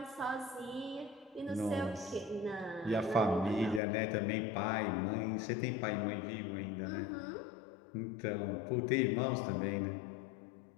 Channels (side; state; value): right; drops out; at 3.8 s